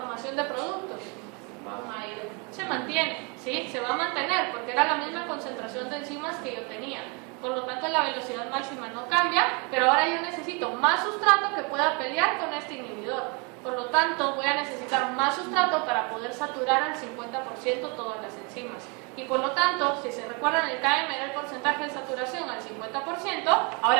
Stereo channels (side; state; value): left; quieter; 32.4 dB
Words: de productos? Se mantiene, ¿sí? Se va a mantener, porque era la misma concentración de enzimas que yo tenía. Por lo tanto, la velocidad máxima no cambia, pero ahora yo necesito más sustrato que pueda pelear con este inhibidor. Por lo tanto, voy a necesitar más sustrato para poder saturar al 50% todas las enzimas. Y por lo tanto, si se recuerdan, el KM era el porcentaje de saturación al 50%,